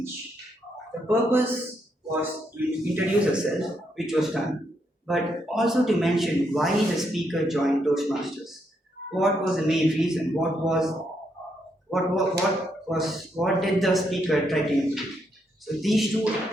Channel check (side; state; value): both; normal; correlation 0.77